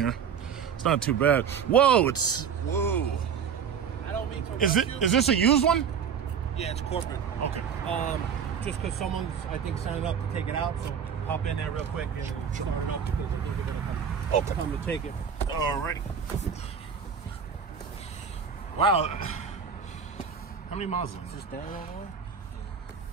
It's not too bad. Whoa, whoa. I don't mean to. Is this a used one? Yeah, it's corporate. Okay. just because someone's, I think, signing up to take it out. So hop in there real quick and start it up because I think they're going to come to take it. Alrighty. Wow. How many miles is Is this? this down all the way?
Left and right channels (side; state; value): left; quieter; 7.1 dB